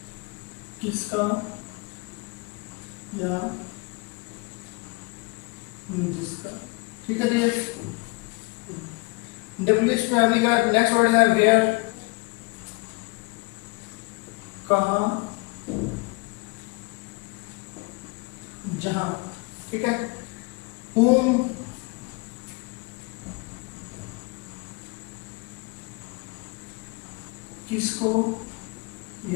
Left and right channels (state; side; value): quieter; right; 27.2 dB